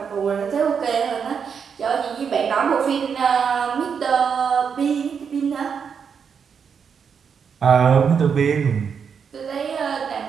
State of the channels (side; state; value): left; quieter; 6.7 dB